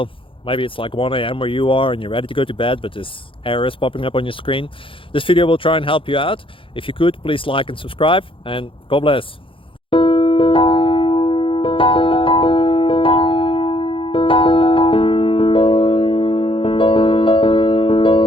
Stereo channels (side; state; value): right; late; 0.25 ms